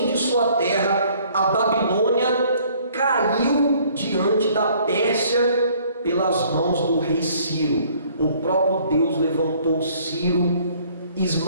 de sua terra, a Babilônia caiu diante da Pérsia pelas mãos do rei Ciro. O próprio Deus levantou Ciro,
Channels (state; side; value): inverted; both; correlation -0.59